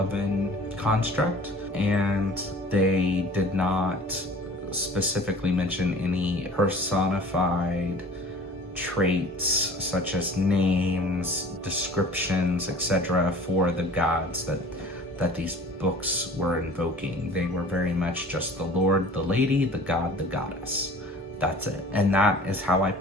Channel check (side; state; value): both; normal; correlation 0.45